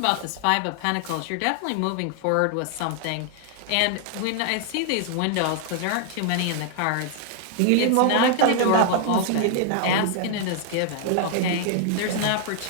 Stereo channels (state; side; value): different; both; correlation 0.00